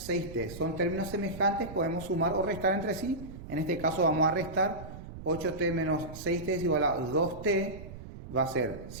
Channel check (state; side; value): noise; right; rumble, 13 dB below the sound